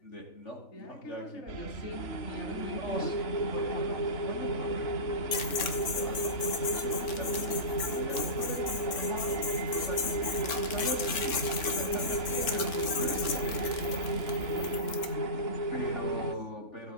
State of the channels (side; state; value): right; late; 3.6 ms